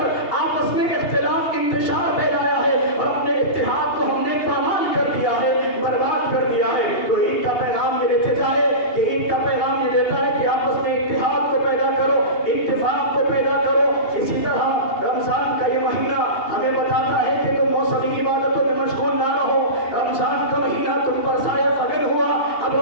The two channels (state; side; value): late; right; 2.8 ms